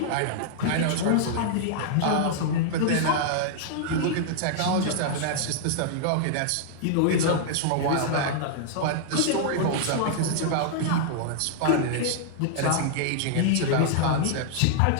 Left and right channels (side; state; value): both; different; correlation -0.01